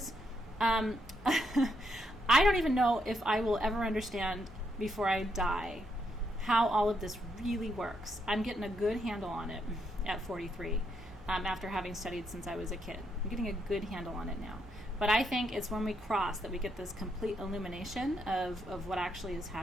I don't even know if I will ever understand before I die how all of this really works. I'm getting a good handle on it at 43 after having studied since I was a kid. I'm getting a good handle on it now. But I think it's when we cross that we get this complete illumination of what actually is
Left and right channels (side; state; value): both; normal; correlation 0.78